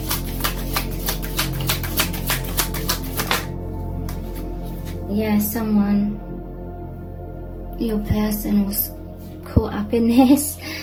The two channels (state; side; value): identical; both; correlation 1.00